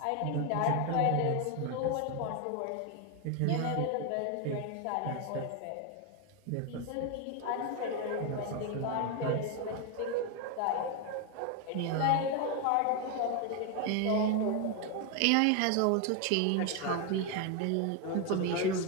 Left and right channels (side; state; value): both; different; correlation 0.01